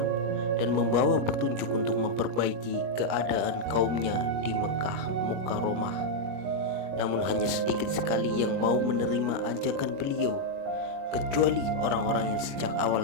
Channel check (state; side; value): late; left; 21 ms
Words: dan membawa petunjuk untuk memperbaiki keadaan kaumnya di Mekah Mukarramah. Namun hanya sedikit sekali yang mau menerima ajakan beliau, kecuali orang-orang yang sejak